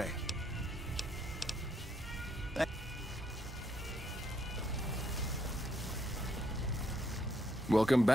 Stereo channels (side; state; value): both; normal; correlation 0.73